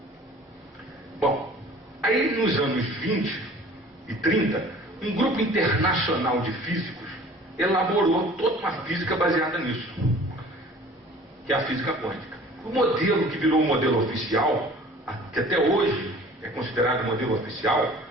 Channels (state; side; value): normal; both; correlation 0.48